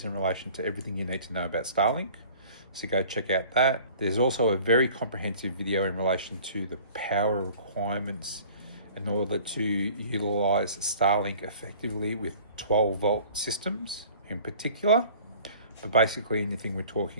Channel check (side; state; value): both; inverted; correlation -0.48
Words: in relation to everything you need to know about Starlink. So go check out that. There's also a very comprehensive video in relation to the power requirements in order to utilize Starlink effectively with 12-volt systems in particular. But basically anything we're